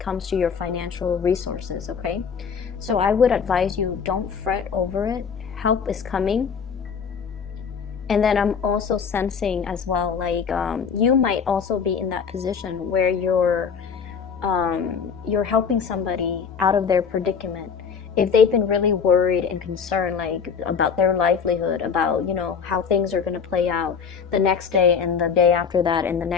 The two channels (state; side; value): quieter; right; 6.4 dB